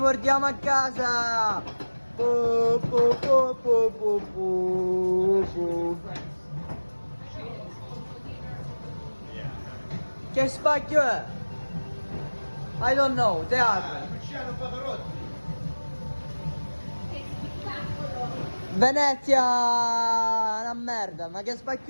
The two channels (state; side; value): inverted; both; correlation -1.00